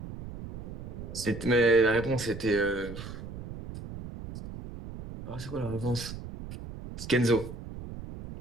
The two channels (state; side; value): noise; right; rumble, 11 dB below the sound